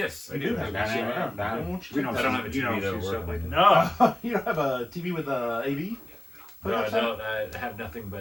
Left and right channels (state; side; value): noise; left; hiss, 29 dB below the sound